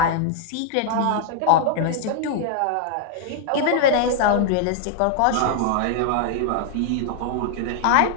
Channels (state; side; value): different; both; correlation 0.00